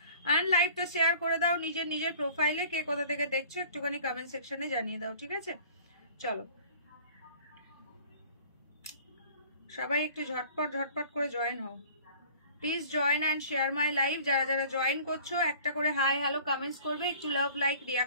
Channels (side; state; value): both; inverted; correlation -0.48